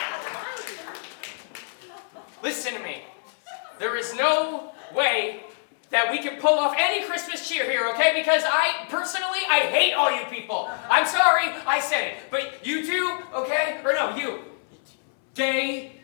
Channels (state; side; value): silent; right; 61 dB below the other